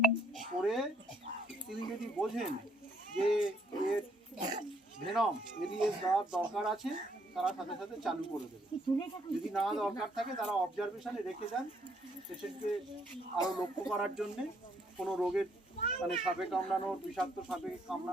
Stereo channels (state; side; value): normal; both; correlation 0.69